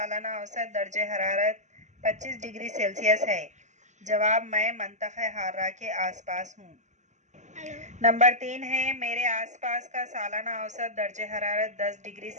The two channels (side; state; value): left; late; 0.34 ms